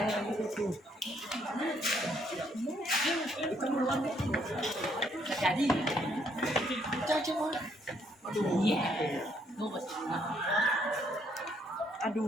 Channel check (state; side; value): normal; both; correlation 0.69